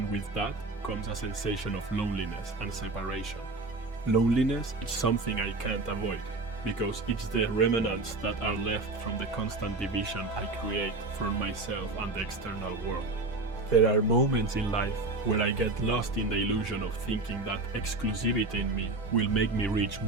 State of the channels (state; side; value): quieter; left; 3.3 dB